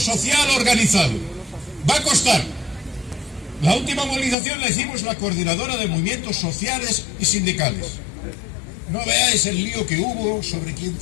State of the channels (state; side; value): drops out; right; at 4.4 s